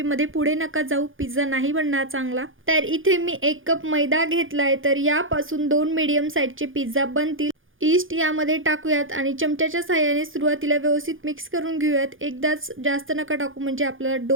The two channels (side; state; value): left; late; 0.58 ms